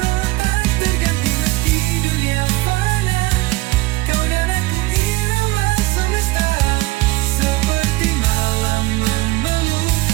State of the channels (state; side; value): quieter; left; 19.7 dB